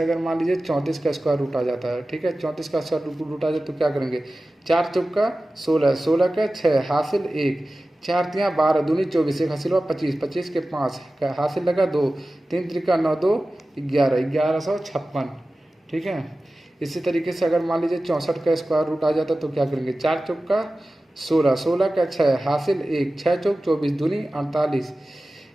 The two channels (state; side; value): normal; both; correlation 0.96